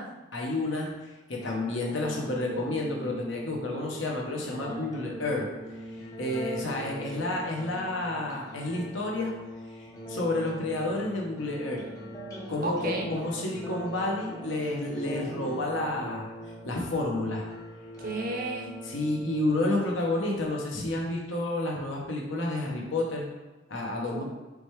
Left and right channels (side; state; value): both; normal; correlation 0.45